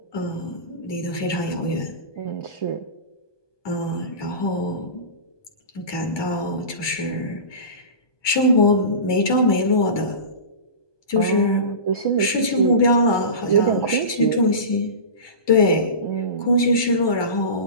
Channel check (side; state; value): right; late; 1.2 ms